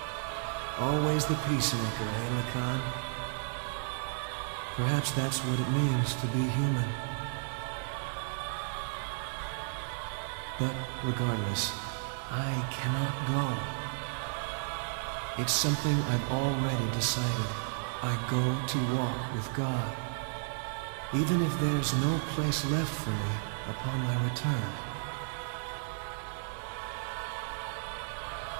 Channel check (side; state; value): left; silent; 56 dB below the other